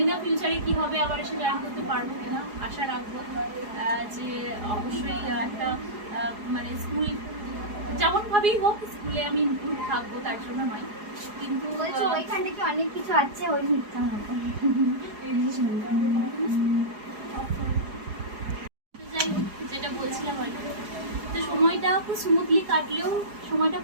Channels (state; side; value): late; left; 4.8 ms